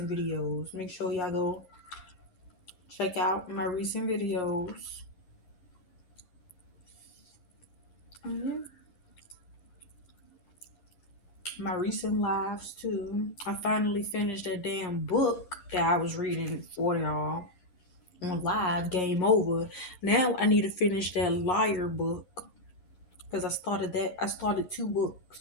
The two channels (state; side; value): late; right; 11 ms